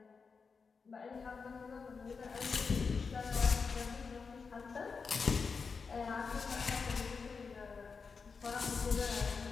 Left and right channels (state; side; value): quieter; right; 5.1 dB